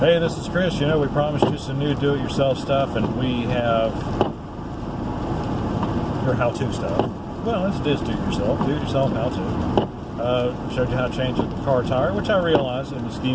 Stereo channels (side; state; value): both; identical; correlation 1.00